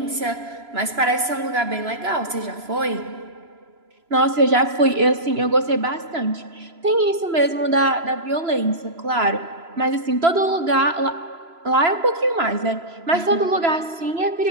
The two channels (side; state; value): left; late; 3.0 ms